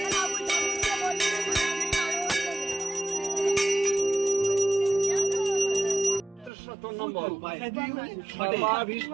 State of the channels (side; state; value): left; drops out; at 6.5 s